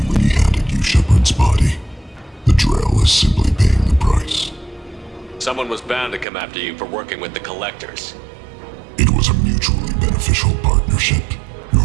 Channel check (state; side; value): drops out; left; at 6.2 s